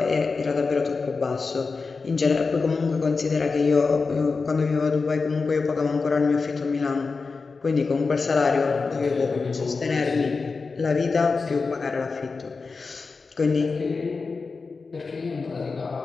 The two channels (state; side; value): quieter; right; 4.4 dB